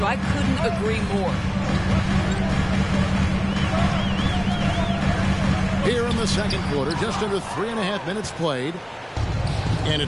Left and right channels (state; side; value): identical; both; correlation 1.00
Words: I couldn't agree more. Here in the second quarter, just under 3.5 minutes played. And